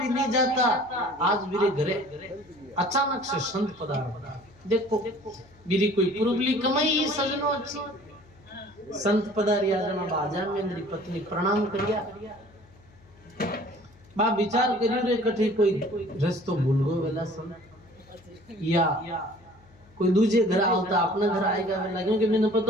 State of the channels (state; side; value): noise; left; hum, 27 dB below the sound